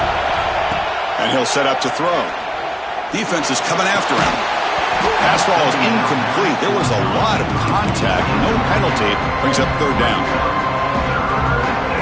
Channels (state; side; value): identical; both; correlation 1.00